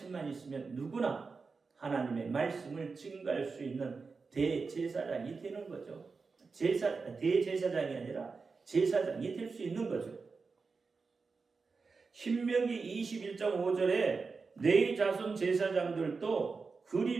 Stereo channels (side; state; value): left; quieter; 4.6 dB